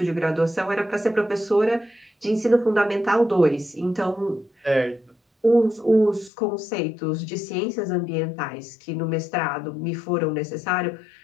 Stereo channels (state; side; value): drops out; right; at 6.3 s